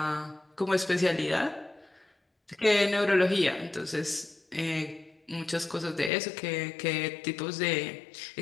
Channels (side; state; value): right; drops out; at 6.1 s